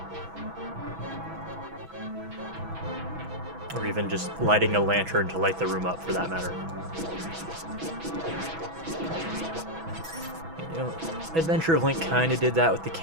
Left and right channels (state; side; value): late; left; 6.1 ms